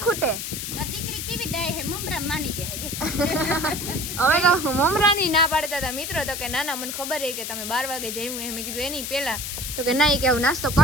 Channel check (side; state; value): left; noise; hiss, 5 dB below the sound